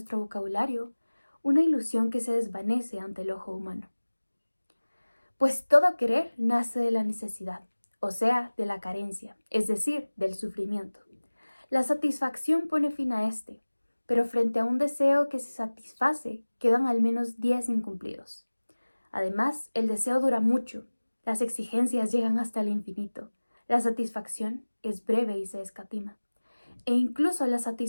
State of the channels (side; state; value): both; inverted; correlation -1.00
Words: vocabulario, una ilusión que se desvanece ante el ojo humano. Pues todo querer nace de la necesidad, o sea, de la carencia, es decir, del sufrimiento. La satisfacción pone fin a este, pero frente a un deseo que se satisface, quedan al menos 10 incumplidos. Además, el deseo dura mucho, las exigencias llegan hasta el infinito, la satisfacción es breve y se escatima. E incluso la